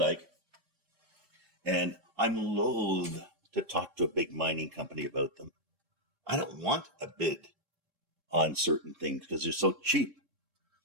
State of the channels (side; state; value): left; late; 3.7 ms